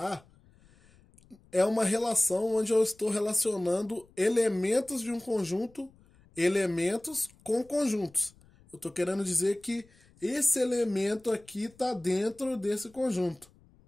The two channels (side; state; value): left; noise; rumble, 29 dB below the sound